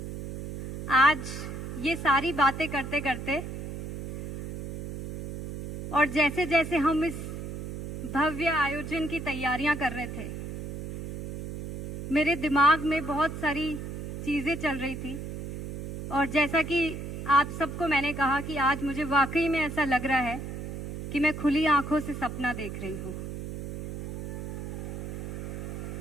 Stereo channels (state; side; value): noise; right; hum, 7 dB below the sound